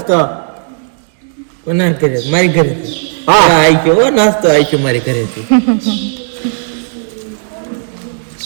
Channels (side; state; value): left; silent; digital silence